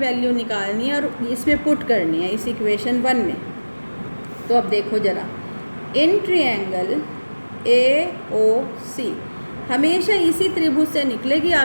निकालनी है और इसमें पुट करनी है इस इक्वेशन 1 में। तो अब देखो ज़रा, इन ट्रायंगल ए ओ सी, हमेशा इसी त्रिभुज से निकलेगी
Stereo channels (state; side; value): inverted; both; correlation -1.00